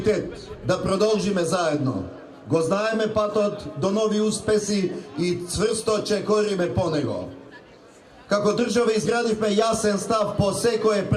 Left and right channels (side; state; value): both; identical; correlation 1.00